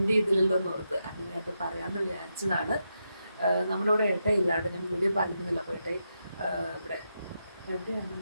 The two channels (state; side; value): inverted; both; correlation -0.85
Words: ഇതിലല്ലോ എന്ന് ഓർത്ത് അങ്ങനെ അത് പറയാമെന്ന് വിചാരിച്ചതാണ്. നമ്മുടെ ഇവിടെ ഏട്ടയില്ലാണ്ട് ഞാൻ വീഡിയോ പറഞ്ഞിരുന്നില്ല. അപ്പോൾ ഏട്ടയി ഇവിടെ